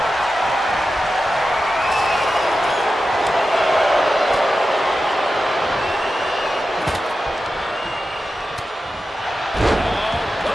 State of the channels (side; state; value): both; normal; correlation 0.92